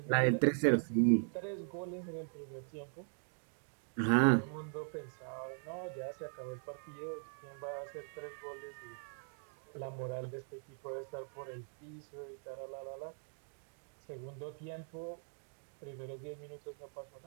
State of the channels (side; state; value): left; silent; 51 dB below the other